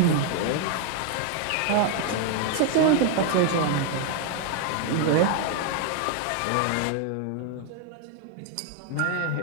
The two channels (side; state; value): both; different; correlation 0.00